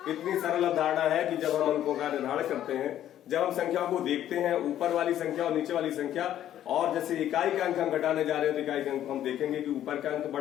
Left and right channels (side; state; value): right; quieter; 11.5 dB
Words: इतनी सरल अवधारणा है कि जब हम अंकों का निर्धारण करते हैं, जब हम संख्याओं को देखते हैं, ऊपर वाली संख्या और नीचे वाली संख्या, और जैसे इकाई का अंक हम घटाने जा रहे हैं तो इकाई का अंक हम देखेंगे कि ऊपर का अंक